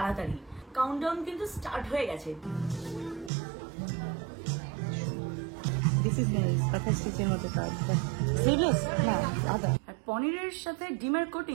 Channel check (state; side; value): drops out; left; at 3.3 s